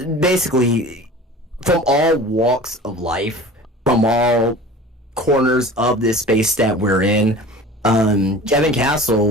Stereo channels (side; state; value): both; normal; correlation 0.40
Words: basically from all walks of life, from all corners of this space that we're in, Kevin